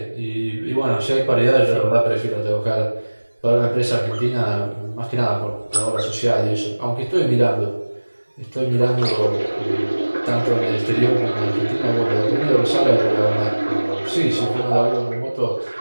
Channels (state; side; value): inverted; both; correlation -1.00